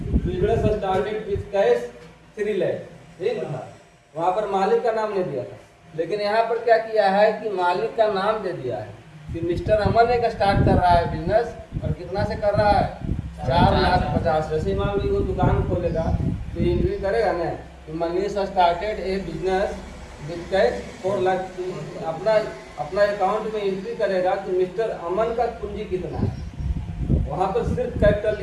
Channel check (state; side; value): identical; both; correlation 1.00